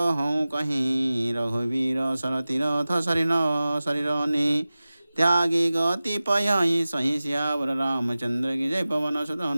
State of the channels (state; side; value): inverted; both; correlation -0.96